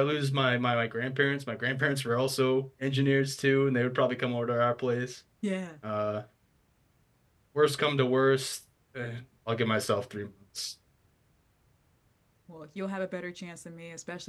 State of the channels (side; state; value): both; identical; correlation 1.00